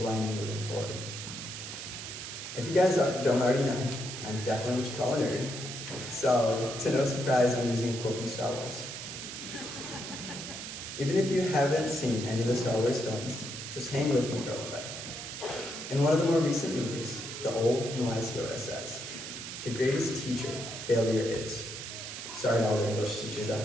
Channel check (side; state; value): right; noise; hiss, 8 dB below the sound